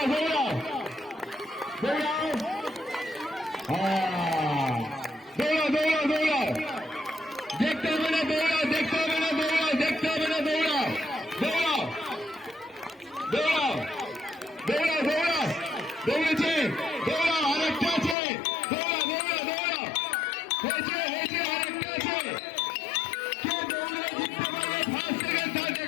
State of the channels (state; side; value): drops out; right; at 18.2 s